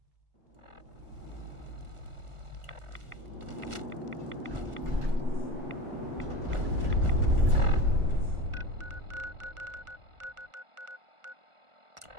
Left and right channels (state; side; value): late; left; 1.4 ms